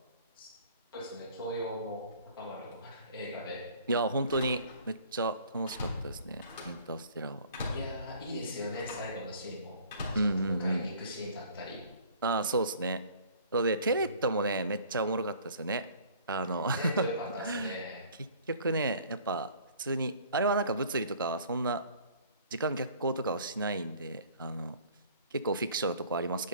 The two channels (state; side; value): inverted; both; correlation -0.52